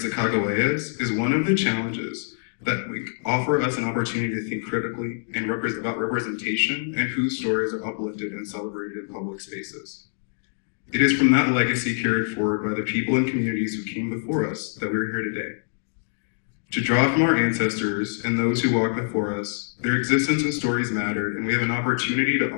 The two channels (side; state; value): right; silent; digital silence